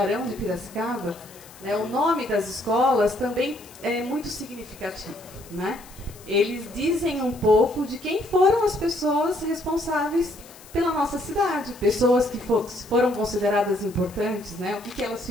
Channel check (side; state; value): left; noise; hiss, 21 dB below the sound